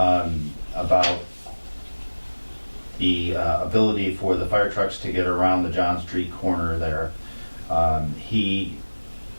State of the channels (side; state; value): both; inverted; correlation -1.00